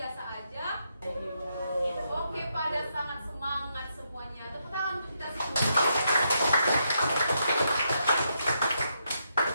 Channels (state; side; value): inverted; both; correlation -0.79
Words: aja. Oke, pada sangat semangat semuanya. Tepuk tangan untuk kita semua.